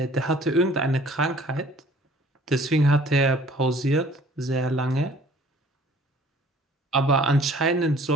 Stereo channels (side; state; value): both; normal; correlation 0.53